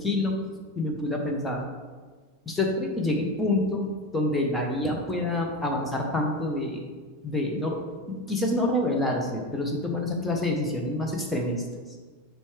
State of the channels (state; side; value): normal; both; correlation 0.25